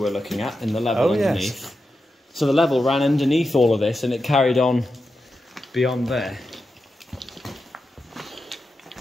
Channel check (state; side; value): normal; both; correlation 0.89